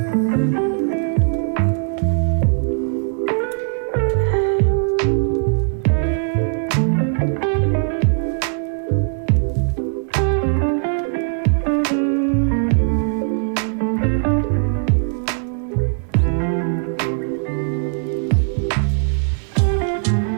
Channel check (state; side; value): silent; left; 58 dB below the other